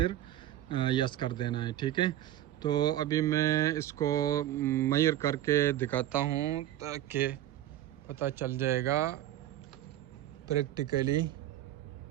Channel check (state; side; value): quieter; left; 13.1 dB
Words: यस कर देना है, ठीक है। तो अभी मैं इसको मेजर करके दिखाता हूँ ताकि पता चल जाएगा प्रैक्टिकली।